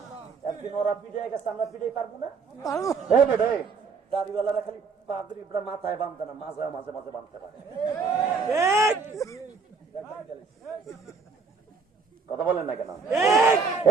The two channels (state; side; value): quieter; left; 4.9 dB